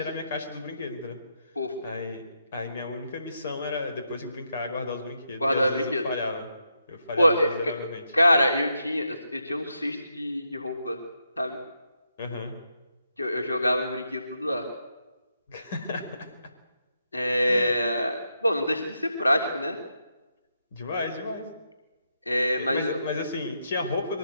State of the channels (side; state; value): both; inverted; correlation -0.83